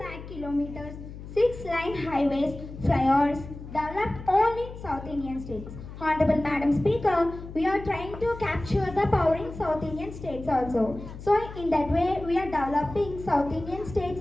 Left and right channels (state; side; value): noise; left; hum, 13 dB below the sound